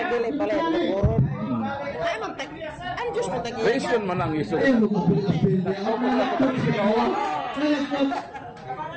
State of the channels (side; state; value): both; identical; correlation 1.00